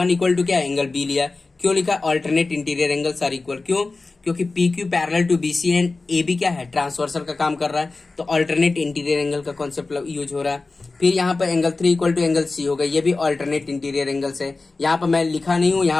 = क्या, एंगल बी लिया। क्यों लिखा, alternate interior angles are equal. क्यों, क्योंकि P Q parallel to B C and A B क्या है, ट्रांसवर्सल का काम कर रहा है। तो ऑल्टरनेट इंटीरियर एंगल का कॉन्सेप्ट यूज हो रहा है। फिर यहाँ पर एंगल 3 = एंगल सी होगा, ये भी ऑल्टरनेट इंटीरियर एंगल्स है। यहाँ पर मैं लिखा नहीं हूँ,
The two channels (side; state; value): right; quieter; 3.6 dB